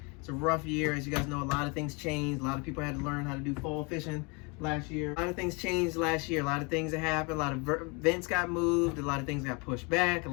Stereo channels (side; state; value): right; quieter; 30.7 dB